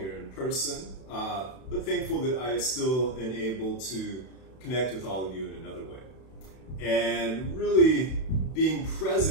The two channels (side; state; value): right; late; 31 ms